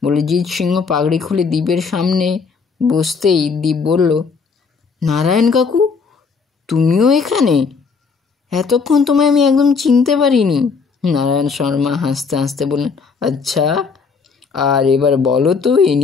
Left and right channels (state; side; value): quieter; right; 5.2 dB